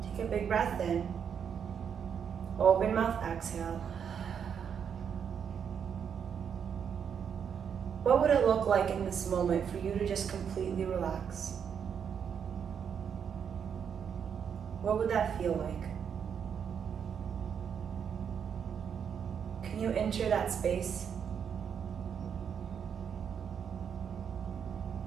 Take a big breath in. Open mouth, exhale. What would it look like in this moment for you to just completely relax? What would that feel like? Can you enter that space?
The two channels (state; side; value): quieter; left; 7.5 dB